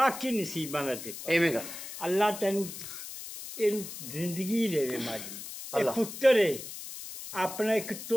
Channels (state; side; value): noise; left; hiss, 10 dB below the sound